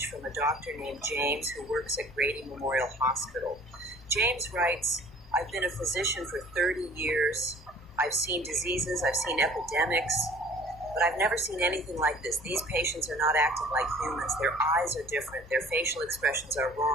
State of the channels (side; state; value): both; normal; correlation 0.50